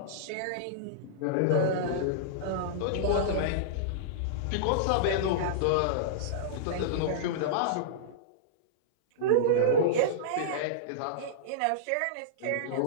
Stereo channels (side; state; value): both; different; correlation -0.03